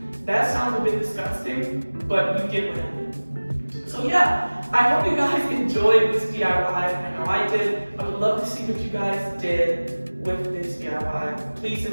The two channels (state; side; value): inverted; both; correlation -1.00